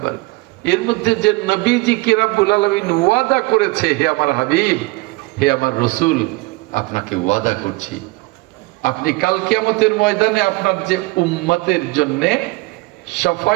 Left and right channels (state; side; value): quieter; left; 23.4 dB